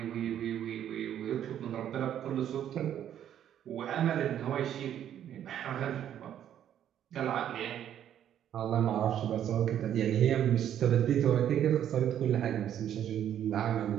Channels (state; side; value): quieter; left; 10.3 dB